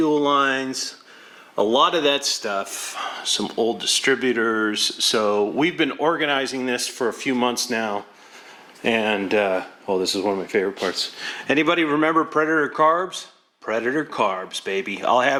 lines. A lot of that stuff. Some old distributors. So we've been organizing this for a few months now. And, oh, this is one of my favorite parts. Anybody remember Predator carbs? Predator carbs, baby. I'll have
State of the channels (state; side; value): identical; both; correlation 1.00